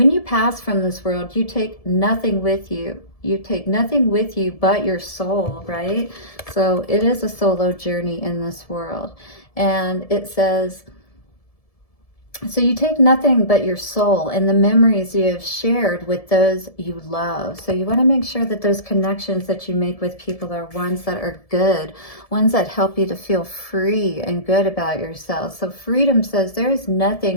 you pass from this world, you take nothing with you. You take nothing with you but your soul, right? So it is a solo journey in this world. And it says, so you take nothing but your soul and the memories you have shared with those you love. So you want to make sure that those connections that you make with people are ones that are good, ones that help you to feel free and good about yourself. So freedom says there is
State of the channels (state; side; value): late; right; 1.7 ms